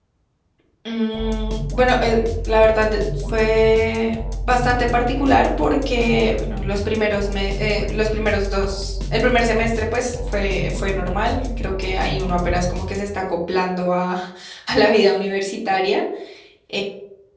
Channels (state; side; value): identical; both; correlation 1.00